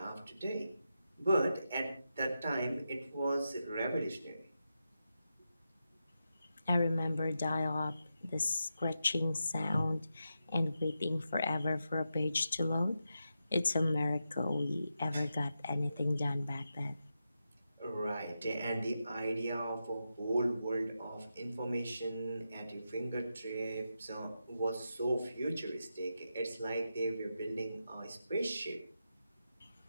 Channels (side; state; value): both; inverted; correlation -0.88